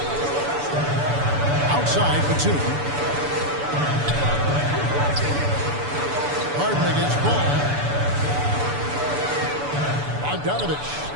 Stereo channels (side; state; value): left; late; 6.9 ms